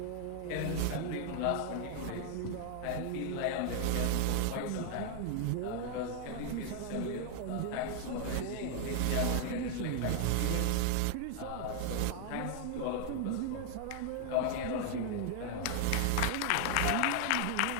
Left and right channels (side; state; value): both; different; correlation 0.00